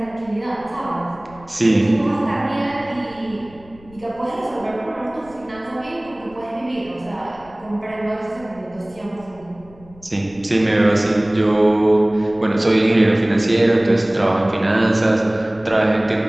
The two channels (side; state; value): left; noise; rumble, 24 dB below the sound